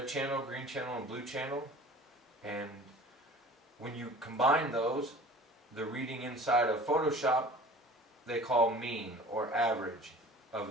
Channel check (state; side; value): normal; both; correlation 0.43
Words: channel, green channel, and blue channel. And when you combine those, the reading inside of Photoshop, they call mean or average